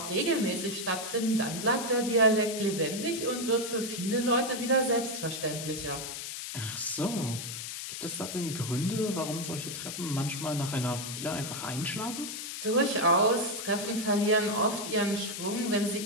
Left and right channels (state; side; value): noise; left; hiss, 7 dB below the sound